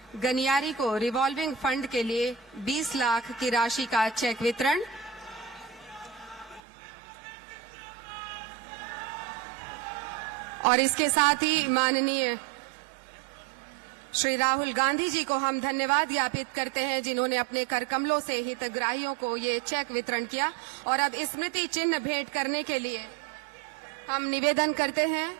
गनियारी को रिवॉल्विंग फंड के लिए 20 लाख की राशि का चेक वितरण। और इसके साथ ही माननीय श्री राहुल गांधी जी को हम धन्यवाद ज्ञापित करते हैं जिन्होंने अपने करकमलों से हितग्राहियों को ये चेक वितरण किया। और अब स्मृति चिन्ह भेंट करने के लिए हम निवेदन करते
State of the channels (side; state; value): left; drops out; at 6.6 s